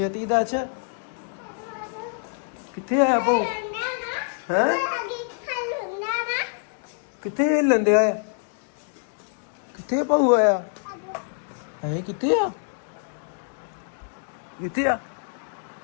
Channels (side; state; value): right; silent; 61 dB below the other